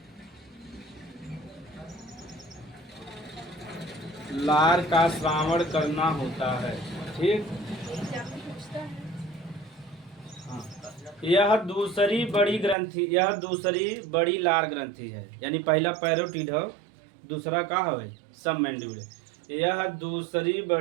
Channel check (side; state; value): left; drops out; at 12.8 s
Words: लार का श्रावण करना होता है। ठीक, हाँ, यह दूसरी बड़ी ग्रंथि, यह दूसरी बड़ी लार ग्रंथि है। यानी पहला पैरोटिड हो, दूसरा का है सब मैंडिबुलर। यह दूसरी